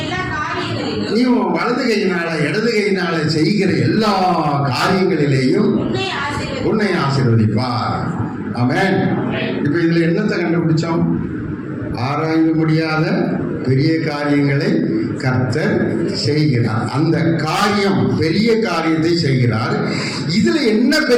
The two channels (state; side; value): identical; both; correlation 1.00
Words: நீ வலது கையினால இடது கையினால செய்கிற எல்லா காரியங்களிலேயும் உன்னை ஆசீர்வதிப்பார். ஆமென். இப்ப இதுல என்னத்தை கண்டுபிடிச்சோம்? ஆராய்ந்து முடியாத பெரிய காரியங்களை கர்த்தர் செய்கிறார். அந்த காரியம், பெரிய காரியத்தை செய்கிறார். இதுல என்ன